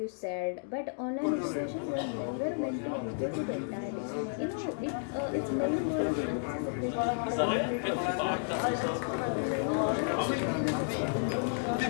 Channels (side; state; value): right; silent; digital silence